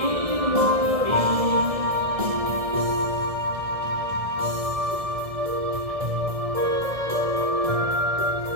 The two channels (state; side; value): late; left; 1.6 ms